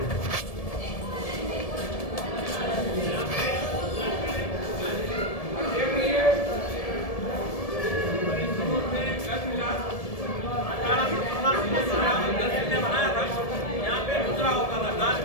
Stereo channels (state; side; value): late; right; 1.7 ms